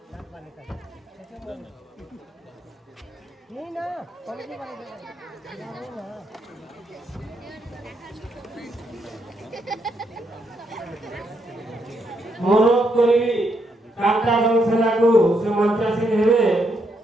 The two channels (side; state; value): both; normal; correlation 0.77